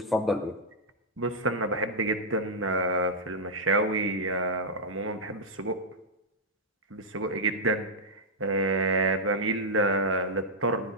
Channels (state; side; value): normal; both; correlation -0.06